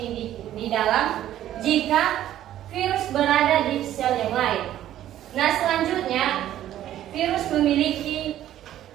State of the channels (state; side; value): quieter; left; 12.4 dB